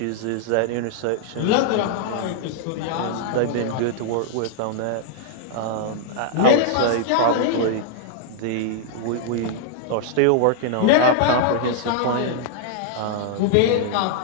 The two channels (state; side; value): different; both; correlation -0.01